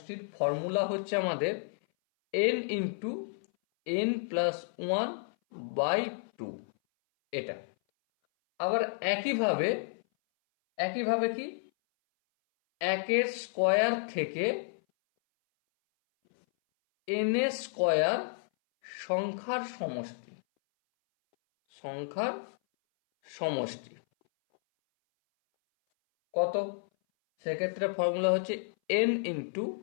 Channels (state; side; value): silent; right; 57 dB below the other